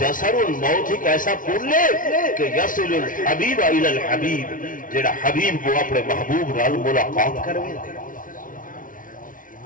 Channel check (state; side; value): late; right; 0.39 ms